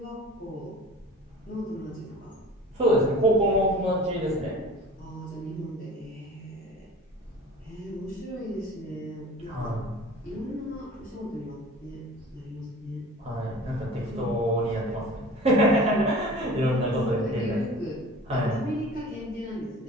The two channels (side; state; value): both; normal; correlation 0.42